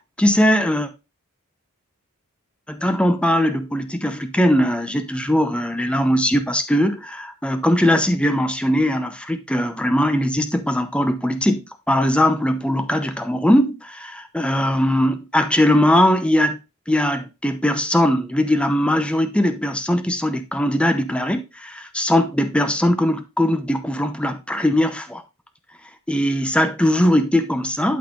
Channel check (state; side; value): normal; both; correlation 0.84